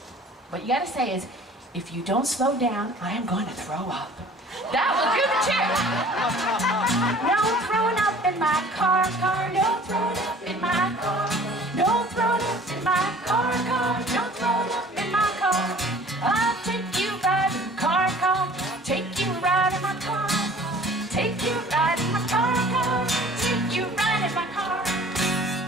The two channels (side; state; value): both; normal; correlation 0.49